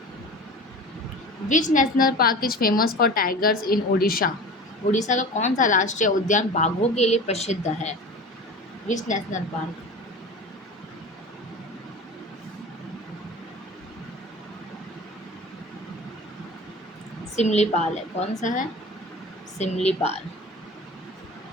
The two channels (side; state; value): both; normal; correlation 0.36